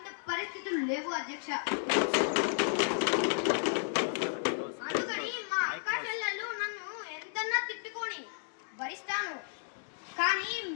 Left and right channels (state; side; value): silent; right; digital silence